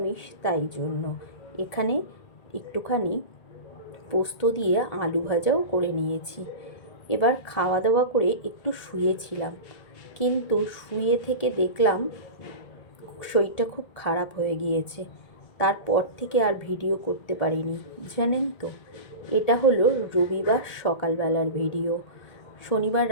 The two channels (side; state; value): right; late; 1.7 ms